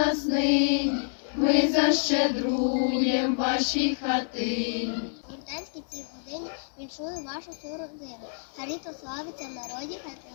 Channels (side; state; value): right; silent; 59 dB below the other